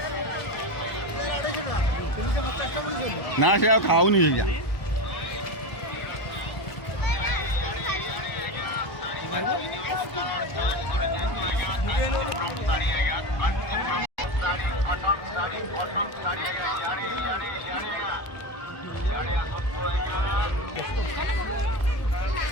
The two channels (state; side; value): late; right; 1.2 ms